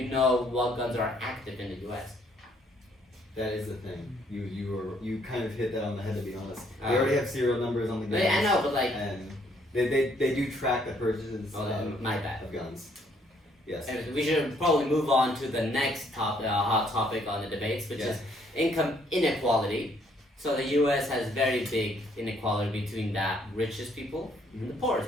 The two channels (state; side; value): normal; both; correlation 0.67